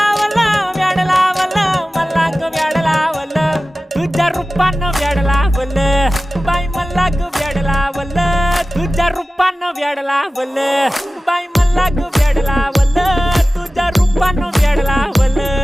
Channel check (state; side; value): normal; both; correlation 0.96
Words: व्याड लावलं मला ग व्याड लावलं तुझ्या रूपानं व्याड लावलं बाई मला ग व्याड लावलं तुझ्या रूपानं व्याड लावलं बाई मला ग व्याड लावलं तुझ्या रूपानं व्याड